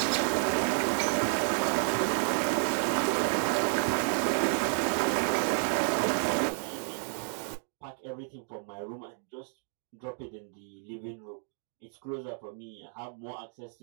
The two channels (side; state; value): left; silent; 57 dB below the other